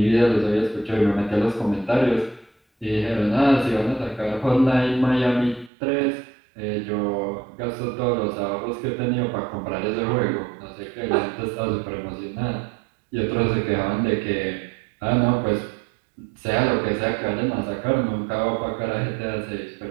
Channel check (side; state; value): left; drops out; at 5.7 s